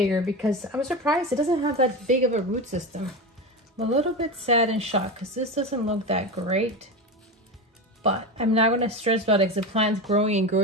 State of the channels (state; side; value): normal; both; correlation 0.22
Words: because I was surprised it doesn't have that big of a root system. I'm a little bit sad and shocked because this doesn't look that great, but I'm not going to stress about it because the plant's growing and